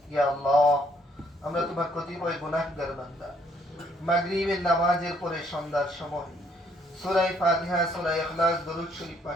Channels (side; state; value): both; normal; correlation 0.67